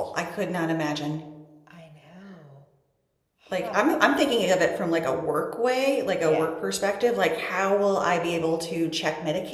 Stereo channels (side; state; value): both; identical; correlation 1.00